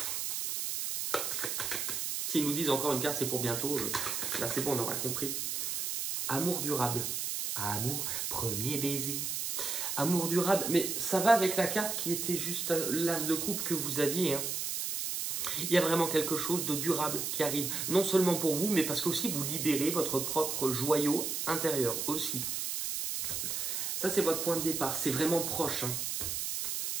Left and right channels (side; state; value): right; noise; hiss, 2 dB below the sound